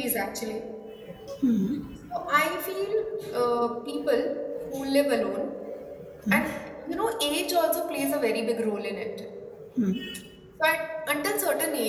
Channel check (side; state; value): both; identical; correlation 1.00